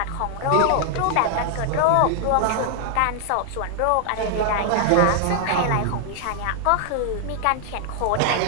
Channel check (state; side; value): different; both; correlation 0.00